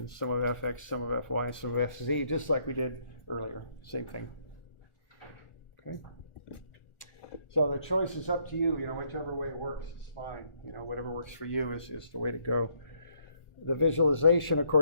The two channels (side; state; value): right; late; 1.4 ms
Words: some of Fx, some of Fy, some of Fz, just like we did earlier. Same thing. Okay. So the choice is up to you. You know, whichever way works is fine. You know, whatever works for you is the way to go. The visualization, of